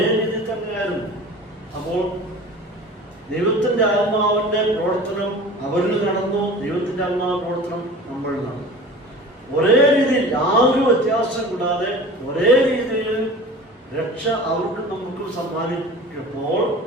രീതി തന്നെയായിരുന്നു. അപ്പോൾ ദൈവത്തിന്റെ ആത്മാവിന്റെ പ്രവർത്തനം അവരിൽ നടന്നു, ദൈവത്തിന്റെ ആത്മാവ് പ്രവർത്തനം നമ്മളിൽ നടന്നു. ഒരേ രീതിയിൽ യാതൊരു വ്യത്യാസം കൂടാതെ ഒരേ രീതിയിൽ രക്ഷ അവർക്കും നമുക്കും സമ്മാനിച്ചപ്പോൾ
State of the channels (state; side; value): normal; both; correlation 0.39